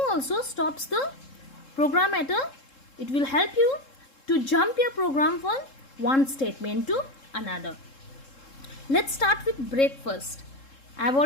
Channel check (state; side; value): late; right; 3.7 ms